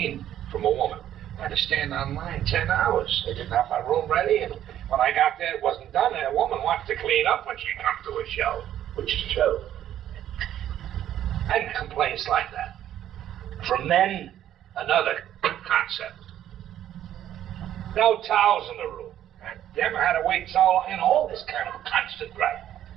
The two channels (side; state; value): left; quieter; 11.4 dB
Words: from a woman, I had to stand online 10 hours. They didn't have my room ready, and when I got there, it wasn't done, and a woman wants to clean up when she comes to a show, which is true. And complaints like that. From then, another concept. No towels in the room. I never had to wait so long, and all this kind of constant gripe.